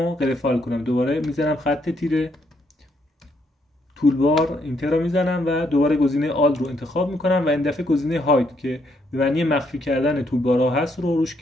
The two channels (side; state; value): both; normal; correlation 0.74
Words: غیر فعال کنم. دوباره میزنم خط تیره تولبار، اینتر رو میزنم و دوباره گزینه آل رو انتخاب میکنم و این دفعه گزینه هاید که به معنی مخفی کردن تولبارها هست رو روش